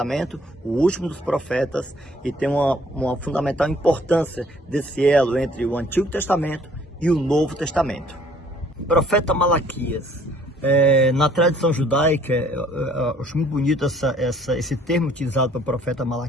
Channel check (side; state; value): both; normal; correlation 0.59